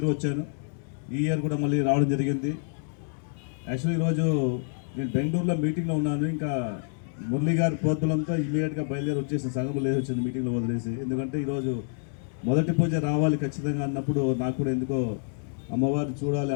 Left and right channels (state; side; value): silent; right; digital silence